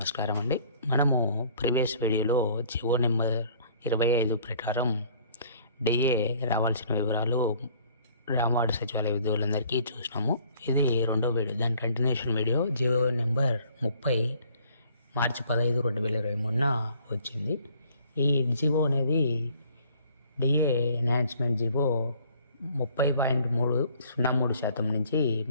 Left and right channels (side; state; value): both; inverted; correlation -0.58